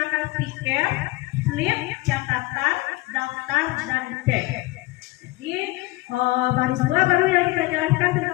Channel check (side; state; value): right; quieter; 20.8 dB